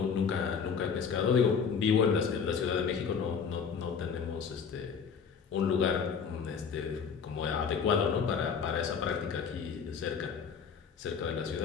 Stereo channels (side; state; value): right; quieter; 6.4 dB